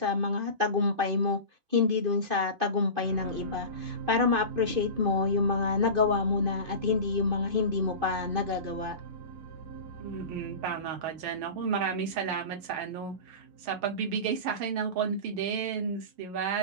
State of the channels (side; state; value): left; late; 2.5 ms